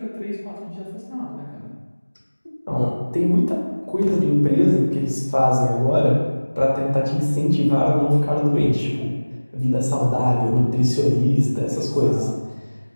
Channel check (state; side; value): inverted; both; correlation -1.00